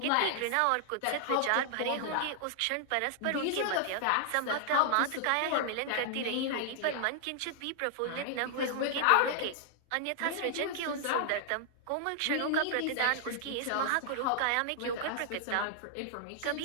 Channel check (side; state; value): both; different; correlation 0.00